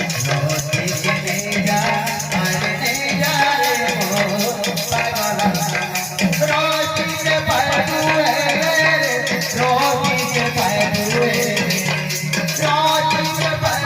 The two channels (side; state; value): both; identical; correlation 1.00